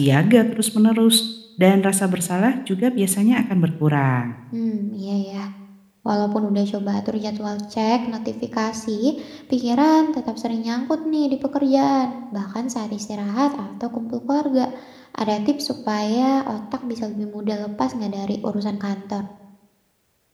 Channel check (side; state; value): both; identical; correlation 1.00